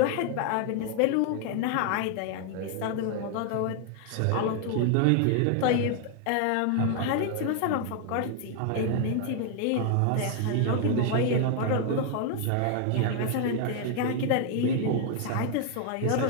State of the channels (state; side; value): different; both; correlation 0.00